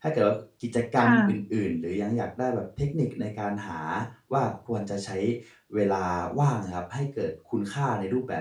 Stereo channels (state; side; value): identical; both; correlation 1.00